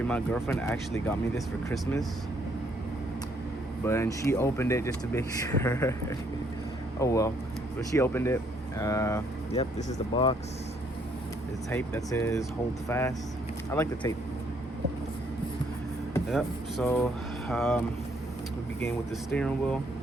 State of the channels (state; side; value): normal; both; correlation 0.68